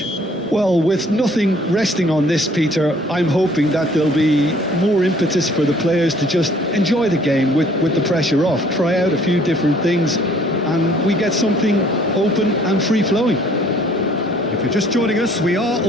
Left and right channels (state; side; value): normal; both; correlation 0.58